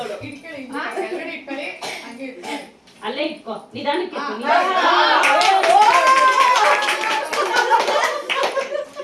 ಅಲ್ಲೇ ಇಟ್ಕೋ, ನಿಧಾನಕ್ಕೆ.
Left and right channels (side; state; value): both; identical; correlation 1.00